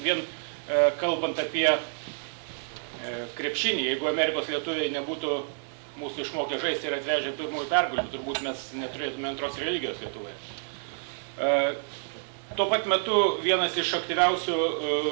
Vien kalbant apie krepšinį, jeigu Amerikos lietuviai nebūtų mūsų išmokę žaisti ir atvežę pirmųjų pergalių, turbūt mes neturėtume antros religijos Lietuvoje. Tuo pat metu vienas iš aktyviausių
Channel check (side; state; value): left; silent; digital silence